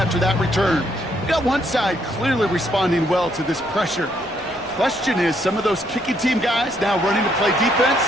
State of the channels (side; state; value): both; normal; correlation 0.72